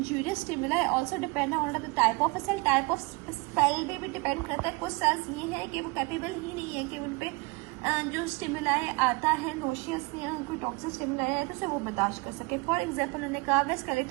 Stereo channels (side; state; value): left; quieter; 26.4 dB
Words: stimuli also depend on the type of cell. Type of cell पे भी डिपेंड करता है। कुछ सेल्स ये है कि वो कैपेबल ही नहीं है कि उन पे जो स्टिमुलाई आता है नोशियस या कोई टॉक्सिक स्टिमुलाई है तो उसे वो बर्दाश्त कर सके। फॉर एग्जाम्पल उन्होंने कहा वे